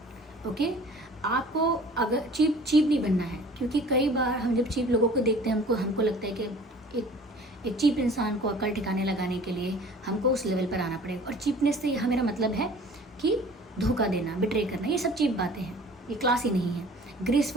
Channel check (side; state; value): both; normal; correlation 0.47